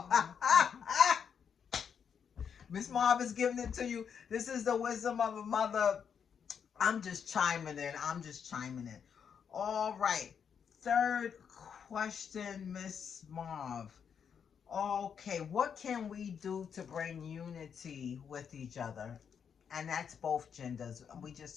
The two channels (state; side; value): quieter; right; 7.3 dB